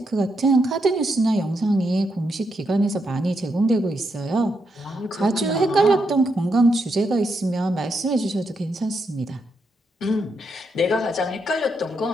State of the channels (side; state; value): both; normal; correlation 0.81